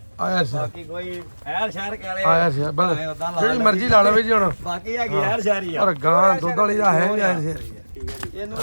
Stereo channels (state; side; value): inverted; both; correlation -1.00